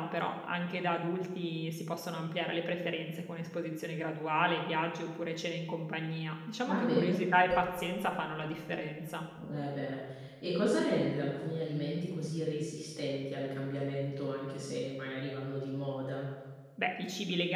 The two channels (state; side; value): identical; both; correlation 1.00